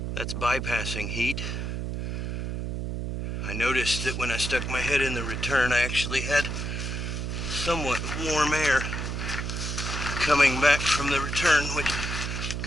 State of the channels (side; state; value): right; noise; hum, 3 dB below the sound